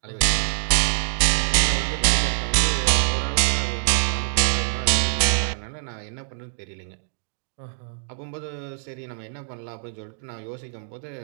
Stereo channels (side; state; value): left; silent; digital silence